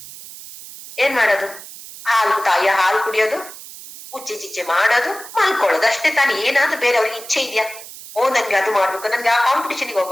ಏನ್ ಮಾಡೋದು? ತಾಯಿಯ ಹಾಲು ಕುಡಿಯೋದು, ಉಚ್ಚೆ ಚಿಚ್ಚೆ ಮಾಡೋದು, ಮಲ್ಕೊಳ್ಳೋದು ಅಷ್ಟೇ ತಾನು. ಏನಾದ್ರೂ ಬೇರೆ ಅವ್ರಿಗೆ ಇಚ್ಛೆ ಇದೆಯಾ? ಓ ನನ್ಗೆ ಅದು ಮಾಡ್ಬೇಕು, ನನ್ಗೆ ಆ ಕಾಂಪಿಟೇಷನ್ಗೆ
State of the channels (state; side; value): noise; right; hiss, 15 dB below the sound